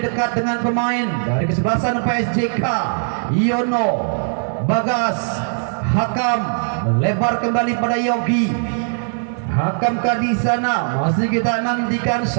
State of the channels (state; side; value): silent; left; digital silence